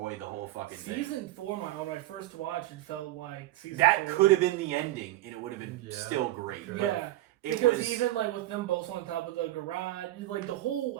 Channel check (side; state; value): left; quieter; 15.8 dB